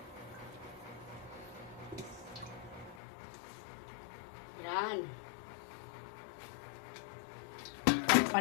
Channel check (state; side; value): drops out; right; at 3.0 s